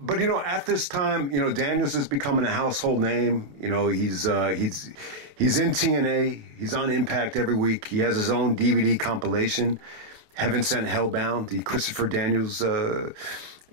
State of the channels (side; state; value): left; late; 28 ms